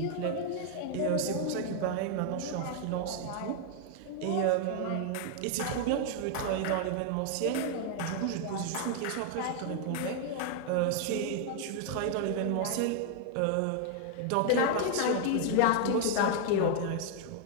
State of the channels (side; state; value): both; different; correlation 0.00